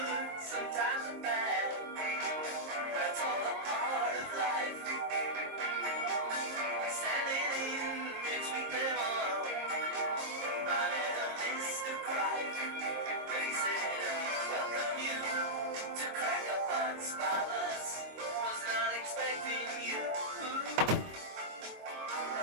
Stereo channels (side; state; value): left; late; 23 ms